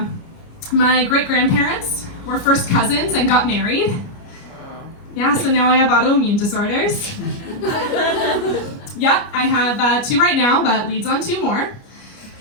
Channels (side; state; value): right; late; 29 ms